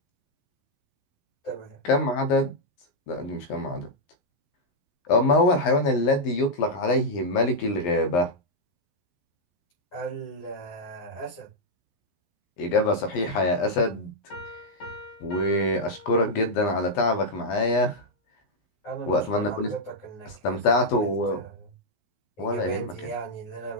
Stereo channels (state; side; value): late; right; 12 ms